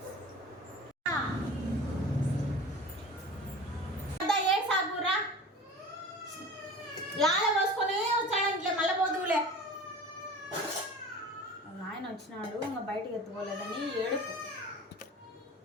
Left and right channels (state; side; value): normal; both; correlation 0.38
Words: లాల పోసుకొని వచ్చాడు ఇంట్లో మళ్ళీ పోదులే. ఆయన వచ్చినాడు ఇంకా బయటికి ఎత్తుకోలేదని ఏడుపు.